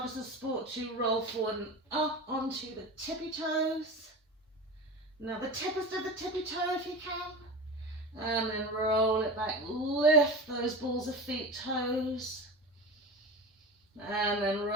as a support to roll forward and up onto the tippy toes. Now the tippest of the tippy toe if you can. And then roll it back. Lift those balls of feet, toes. And then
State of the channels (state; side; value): normal; both; correlation 0.29